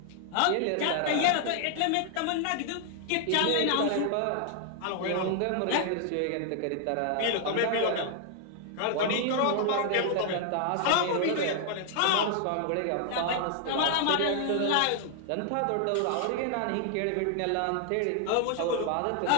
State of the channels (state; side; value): different; both; correlation 0.00